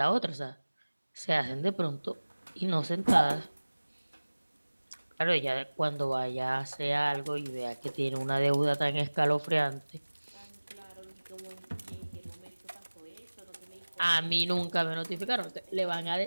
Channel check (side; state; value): both; inverted; correlation -1.00